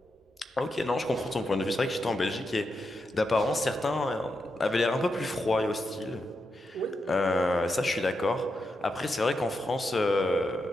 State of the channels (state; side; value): normal; both; correlation 0.86